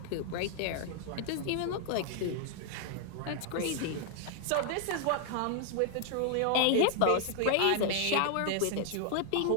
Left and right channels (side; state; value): both; different; correlation 0.00